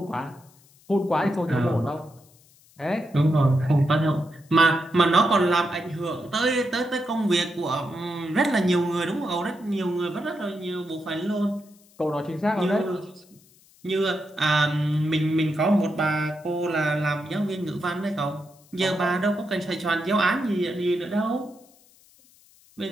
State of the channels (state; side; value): noise; left; hiss, 29 dB below the sound